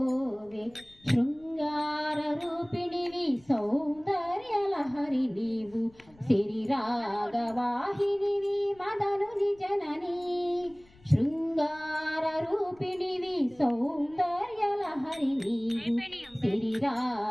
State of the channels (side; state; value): left; noise; rumble, 28 dB below the sound